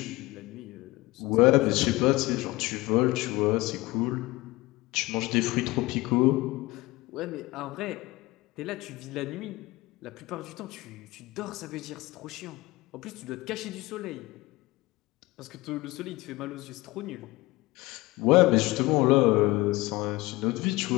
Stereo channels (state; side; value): quieter; right; 20.6 dB